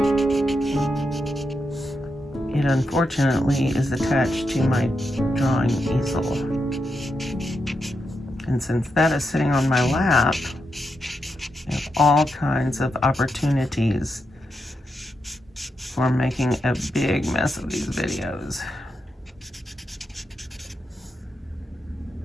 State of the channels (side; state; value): both; normal; correlation 0.85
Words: It unfortunately is attached to my drawing easel. And since that is sitting on my lap, I have all kinds of opportunities for making a big mess of these videos.